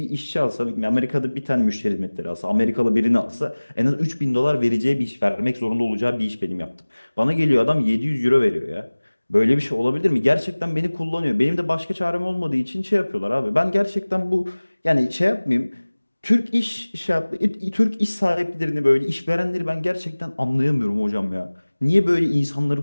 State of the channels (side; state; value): both; inverted; correlation -1.00